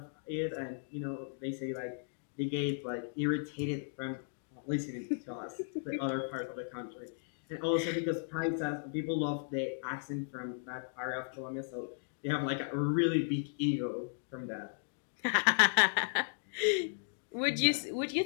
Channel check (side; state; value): right; silent; digital silence